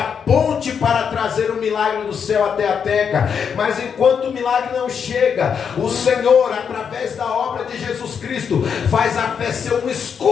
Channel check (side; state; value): right; quieter; 7.0 dB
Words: ponte para trazer o milagre do céu até a terra, mas enquanto o milagre não chega, o Senhor, através da obra de Jesus Cristo, faz a fé ser um